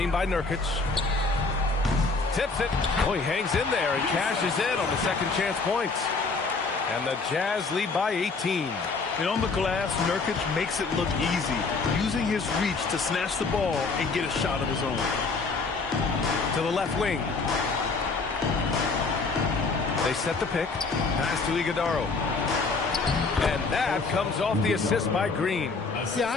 by Nurkic. Tips it. Oh, he hangs in there and cashes in on the second chance points. And the Jazz lead by 18. And on the glass, Nurkic makes it look easy, using his reach to snatch the ball and get a shot of his own. To the left wing. They set the pick. Pass to Iguodaro. And that comes off the assist by Green. Yeah,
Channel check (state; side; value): quieter; right; 4.1 dB